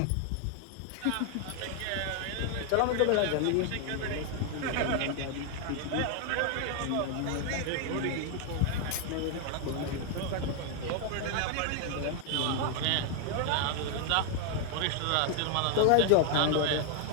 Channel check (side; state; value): both; different; correlation 0.00